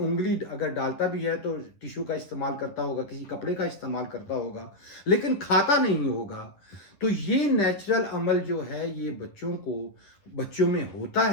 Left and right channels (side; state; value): right; late; 10 ms